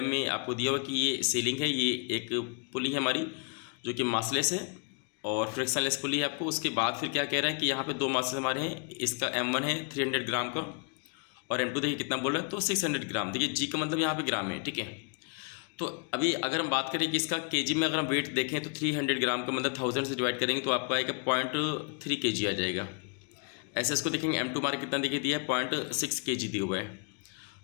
में आपको दिया हुआ कि ये सीलिंग है, ये एक पुली है हमारी जो कि मासलेस है और फ्रिक्शनलेस पुली है आपको। उसके बाद फिर क्या कह रहा है कि यहाँ पे 2 मासेस हमारे हैं, इसका m1 है 300 ग्राम का और m2 देखिए कितना बोल रहा है तो 600 ग्राम। देखिए जी का मतलब यहाँ पे ग्राम है, ठीक है। तो अभी अगर हम बात करें कि इसका केजी में अगर हम वेट देखें तो 300 ग्राम का मतलब 1000 से डिवाइड करेंगे तो आपको आएगा 0.3 kg आ जाएगा। ऐसे इसको देखेंगे m2 हमारा कितना देखिए दिया है 0.6 kg दिया हुआ है।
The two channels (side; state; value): right; quieter; 38.3 dB